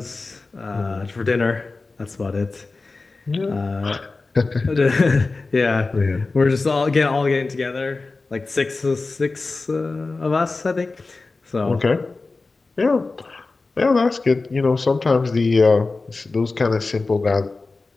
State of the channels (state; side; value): quieter; right; 3.7 dB